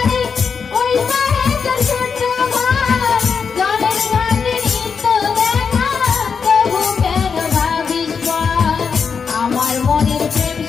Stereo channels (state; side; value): quieter; right; 5.9 dB